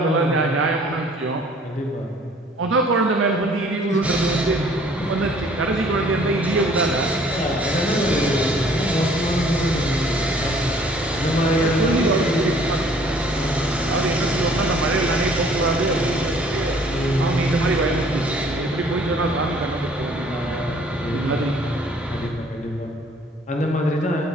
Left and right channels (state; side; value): normal; both; correlation 0.56